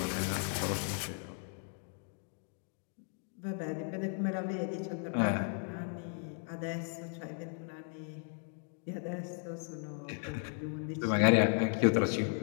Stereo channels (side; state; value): right; silent; 54 dB below the other